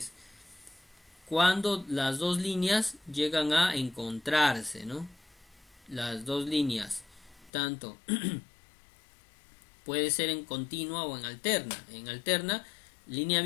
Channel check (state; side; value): drops out; right; at 7.5 s